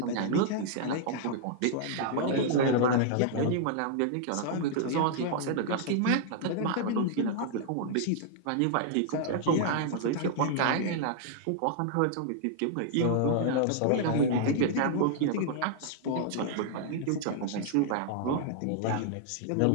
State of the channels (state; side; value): different; both; correlation -0.01